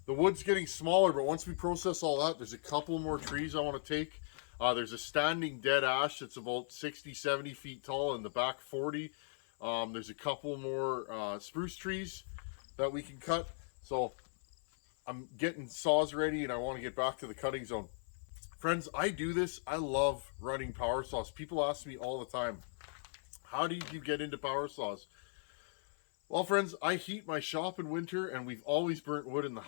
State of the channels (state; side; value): silent; right; 53 dB below the other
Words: The wood's getting smaller, but once we process all that, there's a couple more trees I want to take. There's a standing dead ash that's about 60, 70 feet tall in the back 40. There's a couple more spruce trees that we can cut. So I'm getting saws ready and I want to get back to the cutting zone. Friends, I do this. I love running power saws. People ask me all the time, how did you get into power saws? Well, friends, I heat my shop in winter and we've always burnt wood in the